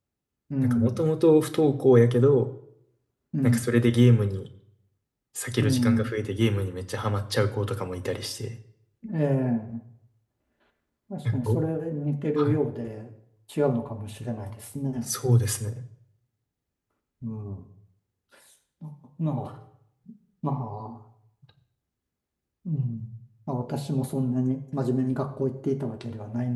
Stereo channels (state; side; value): identical; both; correlation 1.00